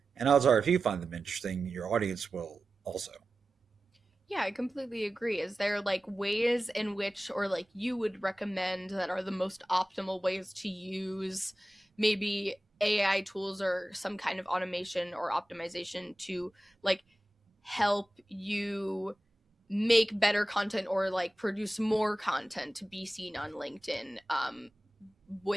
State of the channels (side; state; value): both; normal; correlation 0.95